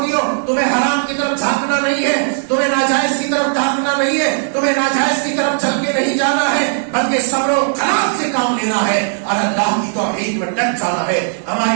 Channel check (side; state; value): left; silent; digital silence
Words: ہو، تمہیں حرام کی طرف جھانکنا نہیں ہے، تمہیں ناجائز کی طرف جھانکنا نہیں ہے، تمہیں ناجائز کی طرف چل کے نہیں جانا ہے، بلکہ صبر و خلاف سے کام لینا ہے اور اللہ کی توحید میں ڈٹ جانا ہے۔